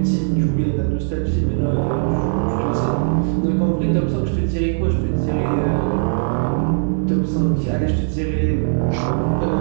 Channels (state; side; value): silent; left; digital silence